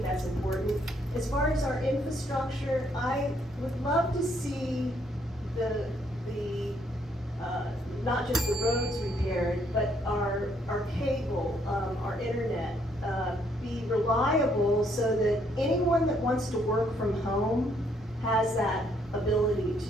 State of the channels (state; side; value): normal; both; correlation 0.70